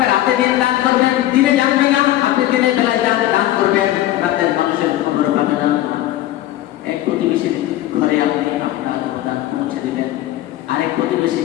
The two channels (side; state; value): right; quieter; 14.3 dB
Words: রাতে দিন দান করবেন, দিনে জানবে না। আপনি দিনের বেলায় দান করবেন, রাতের মানুষের খবর পাবে না। এক প্রতিবেশীর ঘরে আপনি আপনার দান পৌঁছে দেবেন, আরেক প্রতিবেশী